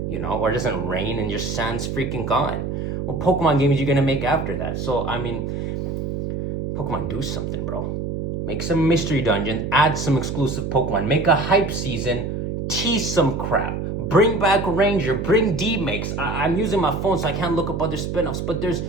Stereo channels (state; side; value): noise; right; hum, 3 dB below the sound